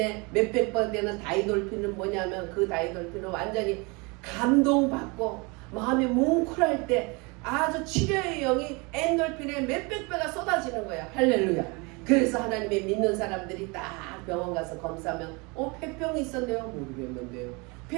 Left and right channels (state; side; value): quieter; left; 28.5 dB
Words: 몇백 번 되는 다이돌핀은 뭐냐면 그 다이돌핀은 완전히 감동받고 마음이 뭉클할 때 아주 치료의 영이 엔돌핀의 몇백 배가 쏟아지는 거야. 할렐루야. 그래서 하나님의 믿는 사람들이 딱 병원 가서 검사하면 폐병이 있었네요. 모르겠는데요.